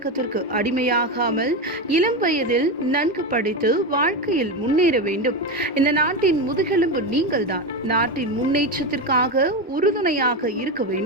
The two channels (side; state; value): both; normal; correlation 0.15